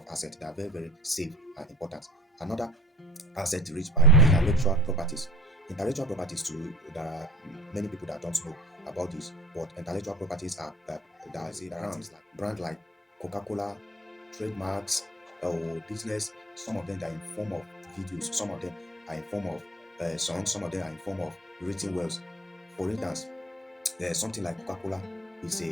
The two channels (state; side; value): normal; both; correlation 0.47